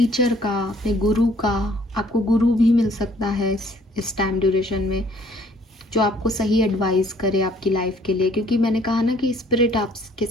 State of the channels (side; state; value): both; normal; correlation 0.60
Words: का, अपने गुरु का, आपको गुरु भी मिल सकता है इस टाइम ड्यूरेशन में, जो आपको सही एडवाइस करे आपकी लाइफ के लिए, क्योंकि मैंने कहा ना कि स्पिरिट आपके